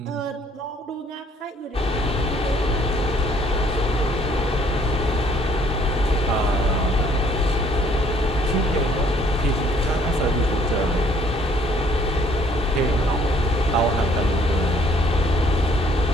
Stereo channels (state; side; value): normal; both; correlation 0.61